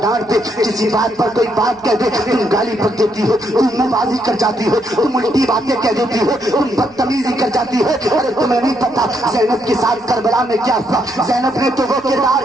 ڈانٹ دے کسی بات پر کوئی بات کہہ دے تم گالی پک دیتی ہو, تم منہ بازی کر جاتی ہو, تم الٹی باتیں کہہ دیتی ہو, تم بدتمیزی کر جاتی ہو. ارے تمہیں نہیں پتا زینب کے ساتھ کربلا میں کیا ہوا. زینب نے تو وہ کردار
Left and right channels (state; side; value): noise; right; rumble, 29 dB below the sound